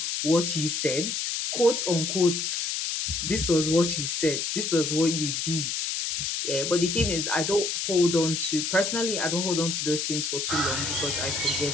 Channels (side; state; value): left; noise; hiss, 1 dB below the sound